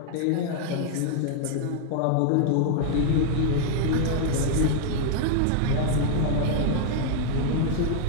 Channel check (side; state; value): both; different; correlation 0.00